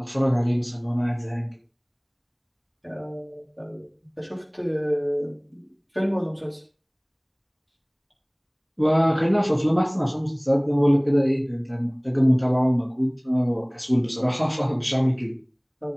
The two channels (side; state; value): both; identical; correlation 1.00